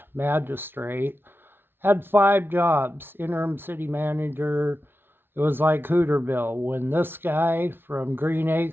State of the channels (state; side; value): late; left; 0.11 ms